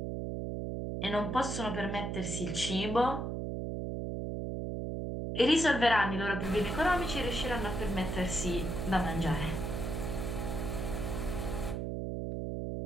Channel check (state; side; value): noise; right; hum, 3 dB below the sound